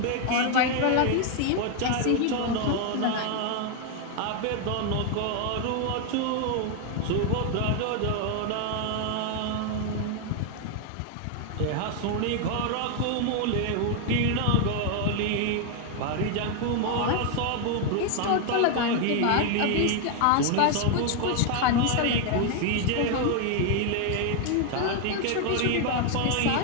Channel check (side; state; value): both; different; correlation 0.00